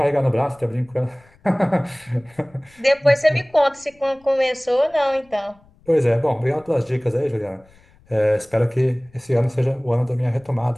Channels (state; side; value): noise; left; rumble, 30 dB below the sound